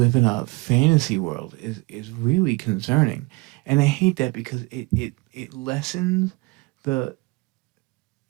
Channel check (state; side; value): quieter; left; 24.7 dB